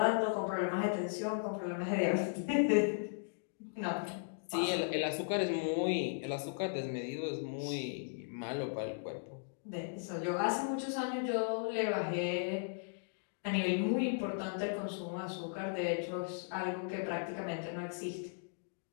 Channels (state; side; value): silent; right; digital silence